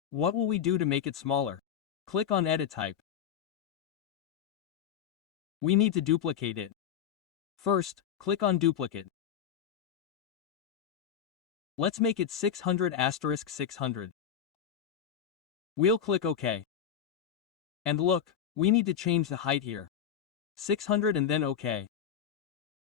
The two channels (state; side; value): quieter; right; 8.7 dB